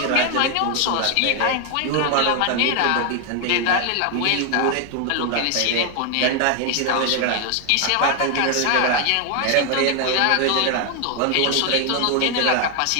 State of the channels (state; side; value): different; both; correlation 0.00